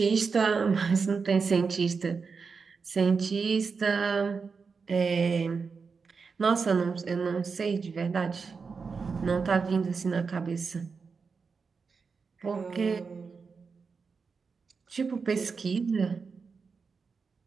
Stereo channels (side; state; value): left; quieter; 5.1 dB